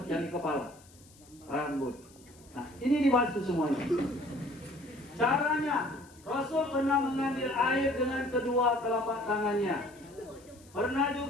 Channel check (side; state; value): left; noise; hiss, 26 dB below the sound